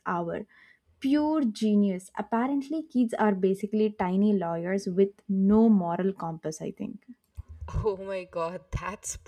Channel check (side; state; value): both; identical; correlation 1.00